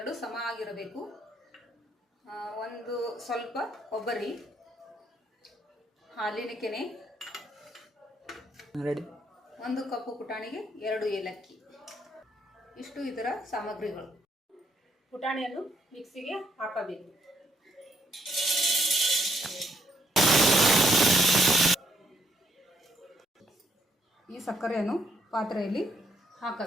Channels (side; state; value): both; normal; correlation 0.72